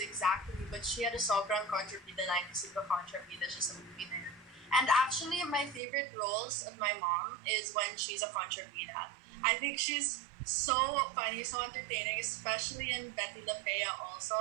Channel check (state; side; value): drops out; left; at 5.8 s